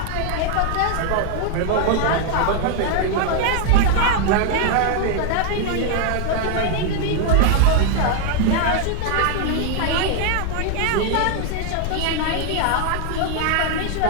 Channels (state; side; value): different; both; correlation 0.01